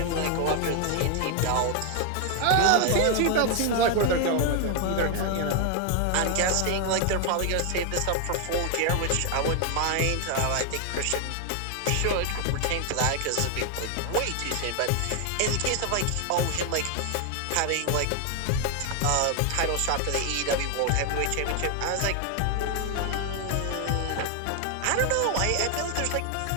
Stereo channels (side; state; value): both; different; correlation 0.00